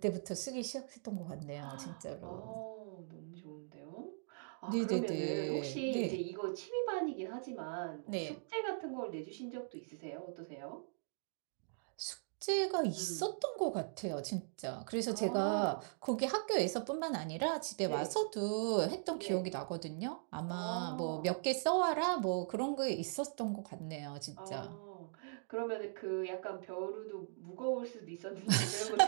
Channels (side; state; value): left; silent; digital silence